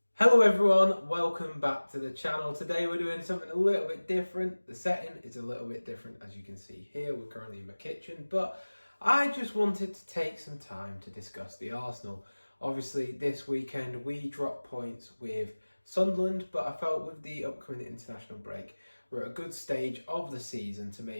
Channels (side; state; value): both; inverted; correlation -1.00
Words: Hello everyone, welcome back to the channel. Today we're doing something a little bit different. The setting is a little bit different, as you can see here. We're currently in my kitchen, but I just wanted to take some time to discuss the Arsenal. Obviously this weekend we dropped points with Sunderland, but I felt with the upcoming international break we're at a good stage of the season to